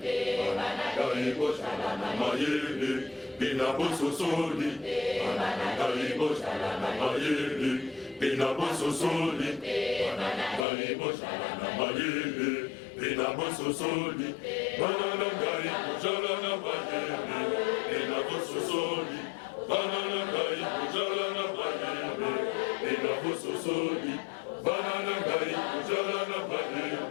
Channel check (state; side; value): drops out; right; at 10.7 s